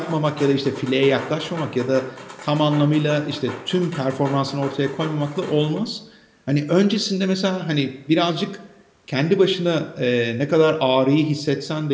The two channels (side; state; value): both; identical; correlation 1.00